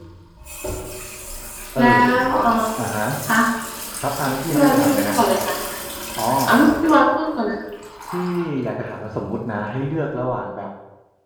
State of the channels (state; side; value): identical; both; correlation 1.00